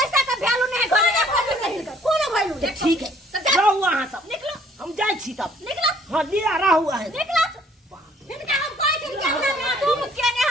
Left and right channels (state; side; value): normal; both; correlation 0.60